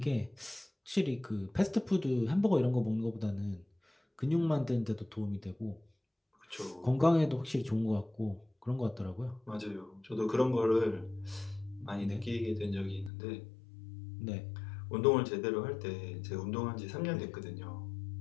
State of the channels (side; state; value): right; drops out; at 13.1 s